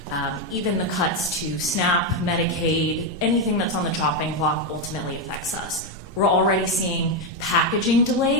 even the cuts to SNAP, Medicaid, anything that's on the chopping block ultimately affects us. We're already seeing packaging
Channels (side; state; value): both; normal; correlation 0.06